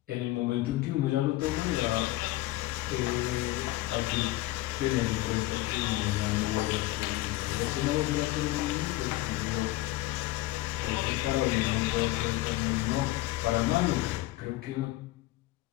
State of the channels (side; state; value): right; quieter; 17.8 dB